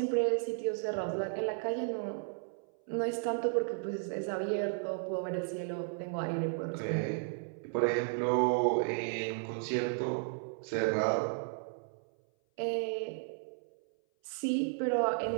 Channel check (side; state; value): left; silent; 55 dB below the other